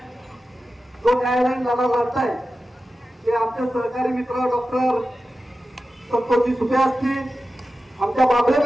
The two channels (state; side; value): normal; both; correlation 0.93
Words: जो न्यायालयीन लढा लढताय ते आमचे सहकारी मित्र डॉक्टर संतोषजी सुपे असतील, आमच्या बाबळे